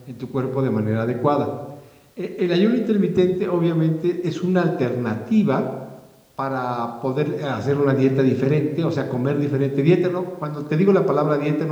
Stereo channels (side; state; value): both; identical; correlation 1.00